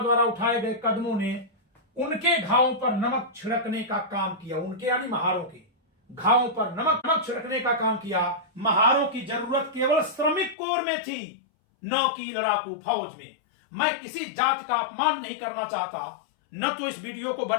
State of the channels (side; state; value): right; drops out; at 10.6 s